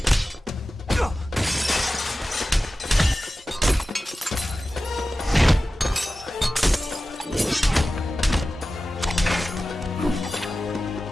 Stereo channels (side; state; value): both; normal; correlation 0.95